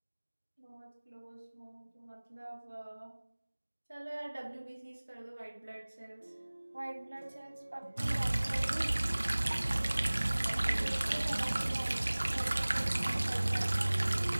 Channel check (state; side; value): inverted; both; correlation -1.00